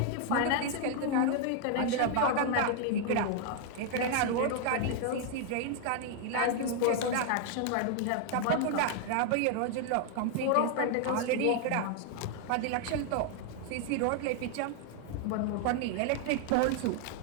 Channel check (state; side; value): different; both; correlation 0.00